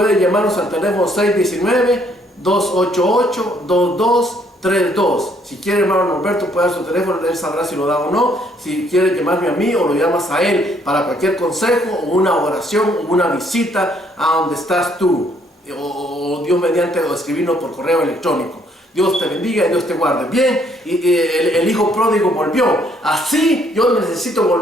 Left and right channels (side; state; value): both; normal; correlation 0.67